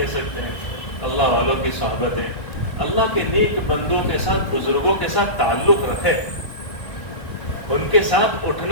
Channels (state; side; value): late; right; 1.5 ms